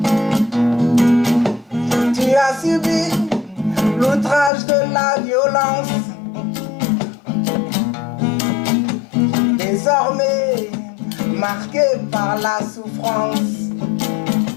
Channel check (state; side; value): drops out; right; at 4.5 s